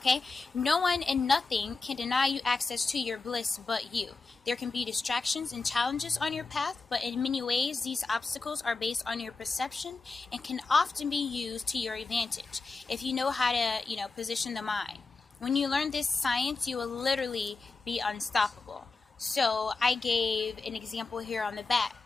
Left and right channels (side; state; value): right; quieter; 4.0 dB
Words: no one and nothing can deny you access to your bliss but you. There can be distractions and challenges on your path, but in many ways, these obstacles are based on your perception and can often be used to your advantage if you know how to, position the mind. When you learn this science, you will literally be unstoppable. So I gave an example here on the back.